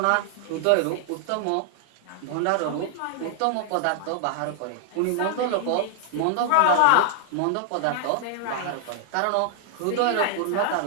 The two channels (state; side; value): different; both; correlation 0.00